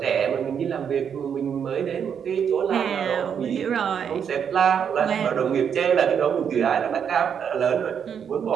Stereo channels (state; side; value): quieter; left; 7.7 dB